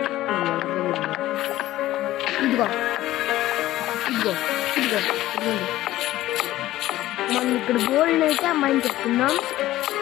ఇదిగో మనం ఇక్కడ గోల్డ్ అయితే మైండ్ చెప్తున్నాం.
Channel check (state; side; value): quieter; right; 15.3 dB